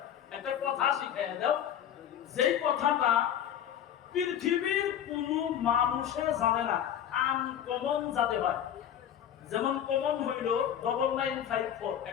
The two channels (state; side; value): quieter; right; 9.9 dB